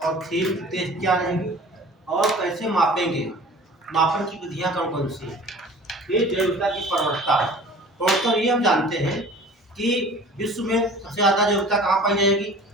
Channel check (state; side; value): normal; both; correlation 0.45